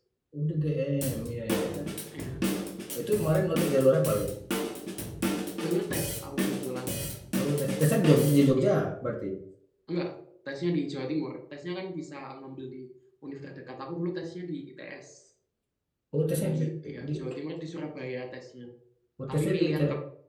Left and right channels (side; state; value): both; identical; correlation 1.00